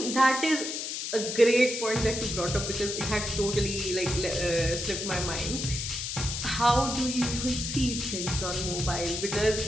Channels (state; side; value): noise; left; hiss, 4 dB below the sound